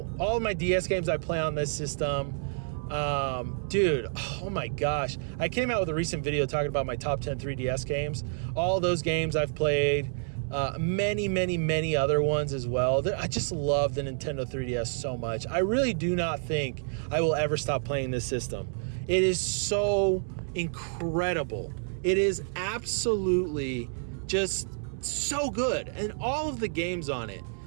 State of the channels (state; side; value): silent; left; 59 dB below the other